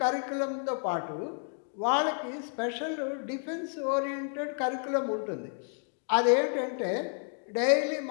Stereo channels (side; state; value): right; silent; 57 dB below the other